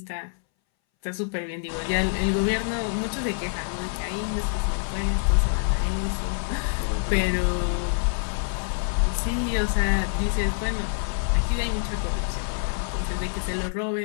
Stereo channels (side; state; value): right; silent; 61 dB below the other